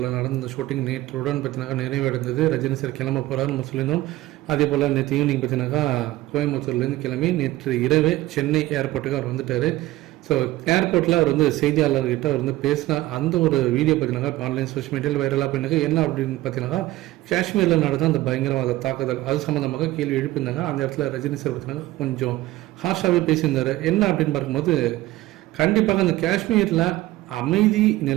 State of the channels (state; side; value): quieter; left; 17.0 dB